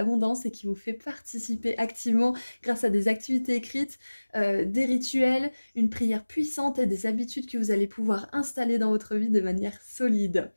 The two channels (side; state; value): both; inverted; correlation -1.00